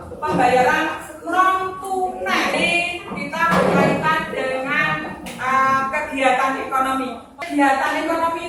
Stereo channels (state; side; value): identical; both; correlation 1.00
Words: pembayaran non kegiatan ekonomi